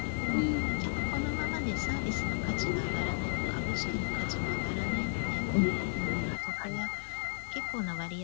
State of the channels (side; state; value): right; silent; digital silence